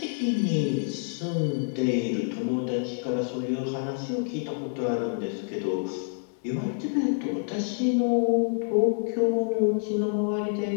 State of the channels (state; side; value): silent; right; 60 dB below the other